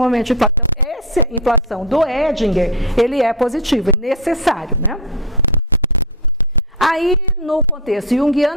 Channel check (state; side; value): normal; both; correlation 0.15